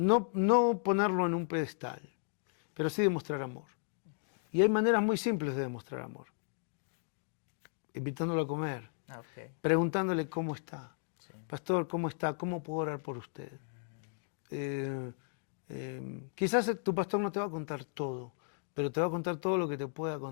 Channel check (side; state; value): right; silent; 55 dB below the other